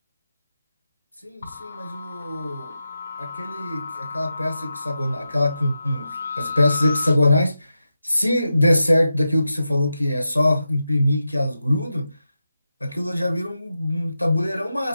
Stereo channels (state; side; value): inverted; both; correlation -0.90